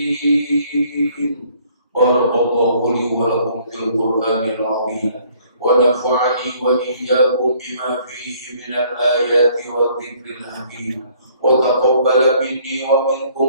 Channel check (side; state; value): both; inverted; correlation -0.61